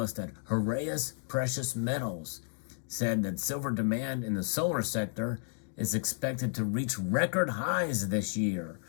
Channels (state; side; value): silent; right; 56 dB below the other